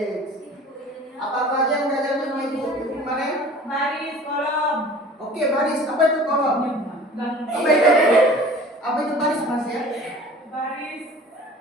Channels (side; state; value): both; normal; correlation 0.44